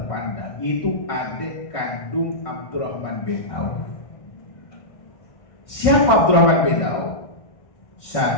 yaitu adik kandung Abdurrahman bin Auf. Siapa Abdurrahman bin Auf?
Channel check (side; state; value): right; late; 1.6 ms